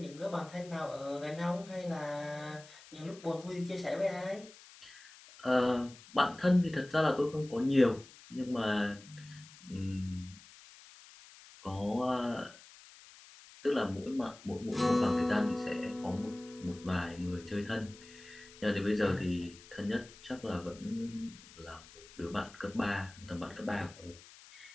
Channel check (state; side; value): noise; left; hiss, 20 dB below the sound